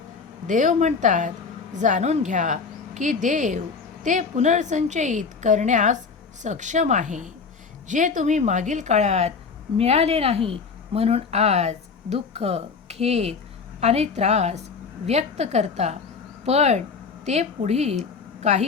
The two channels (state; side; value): quieter; right; 5.3 dB